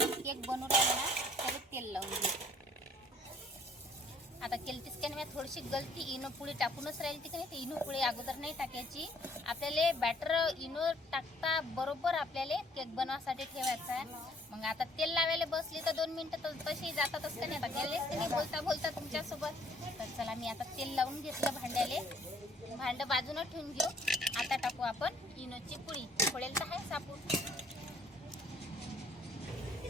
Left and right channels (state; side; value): normal; both; correlation 0.61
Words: केक बनवू राहिलो ना त्याला तेल लावून घेऊ. आता केलतीच की नाही, थोडीशी गलती इनो पुडी टाकूनच राहील ती की नाही. ते इनो पुडी अगोदर नाही टाकायची. आपल्याला बॅटर इनो टाकता बरोबर आपल्याला केक बनवासाठी ठेवायचा आहे. मग आता तेल लावायला बसली तर 2 मिनिटं तर तशी जातातच का नाही. आता गेलेच की नाही बोलता तुमच्यासोबत. तर चला मी आता तेल लावून घेतलं भांड्याले. भांडं बाजूनं ठेवून घेऊ. आता टाकू आपण इनोची पुडी. फोडेल तर आहे सापून.